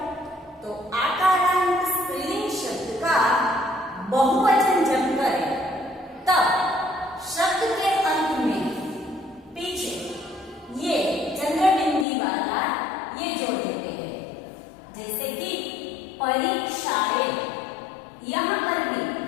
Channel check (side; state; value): right; drops out; at 12.1 s